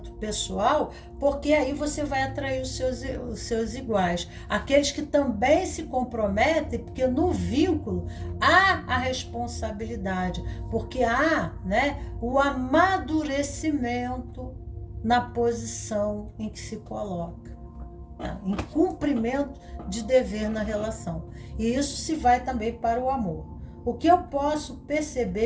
pessoal, porque aí você vai atrair os seus iguais. Aqueles que também se comprometem, porque no vínculo há a responsabilidade, porque há, né, o amadurecimento na posição em que se coloca, tá? Em cumprimento de dever na relação. E isso se vai também para o amor. O que eu posso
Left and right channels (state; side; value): identical; both; correlation 1.00